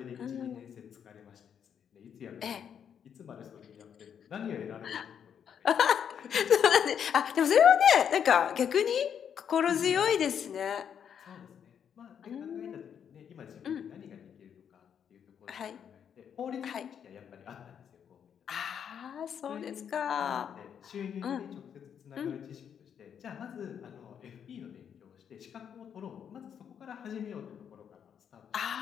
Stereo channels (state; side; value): quieter; right; 8.2 dB